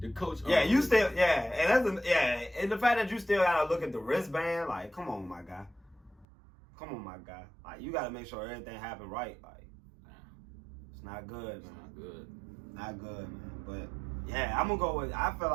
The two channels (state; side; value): drops out; left; at 6.2 s